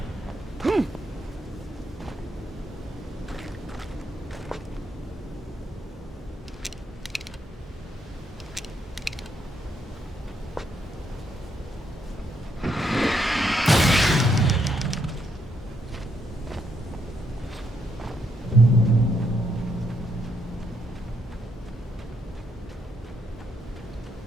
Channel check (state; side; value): normal; both; correlation 0.76